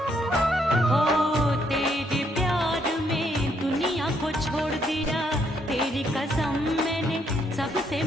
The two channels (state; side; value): normal; both; correlation 0.73